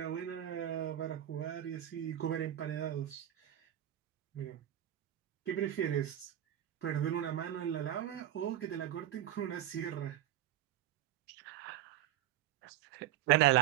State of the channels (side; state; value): left; quieter; 12.4 dB